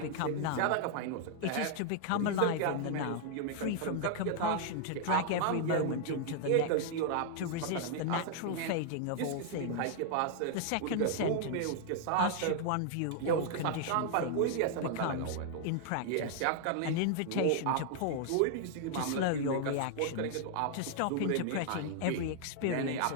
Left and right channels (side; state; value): both; different; correlation 0.00